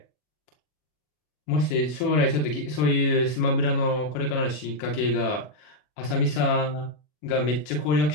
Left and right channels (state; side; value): late; right; 40 ms